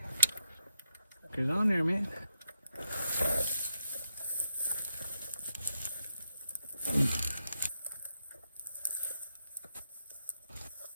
Sucker's on there, man.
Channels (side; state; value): both; inverted; correlation -0.83